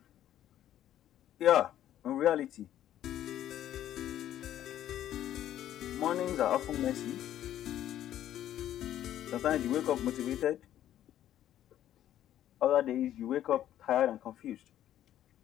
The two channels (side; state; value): right; quieter; 11.9 dB